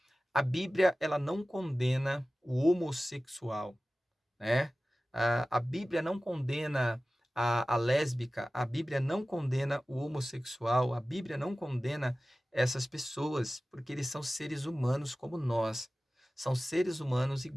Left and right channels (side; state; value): both; normal; correlation 0.96